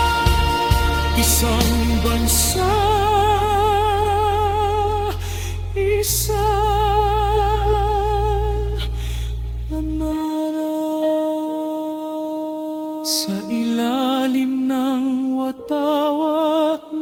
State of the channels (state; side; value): identical; both; correlation 1.00